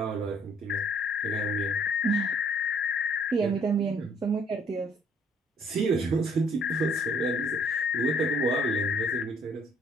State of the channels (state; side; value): normal; both; correlation 0.62